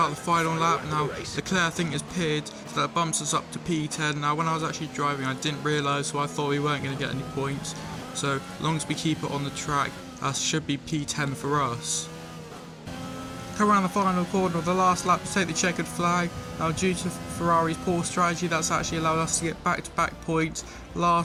the final lap. Now Leclerc I think has pitted, so that bumps us up to P10. Now when I was actually driving I didn't realise, so I thought we weren't going to get any points. So as long as we keep it on the track, that should be P10 for us. Come around the final corner of the last lap to take the checkered flag. Now due to Ferrari's poor strategy, that's actually allowed us to get back-to-back points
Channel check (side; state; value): both; identical; correlation 1.00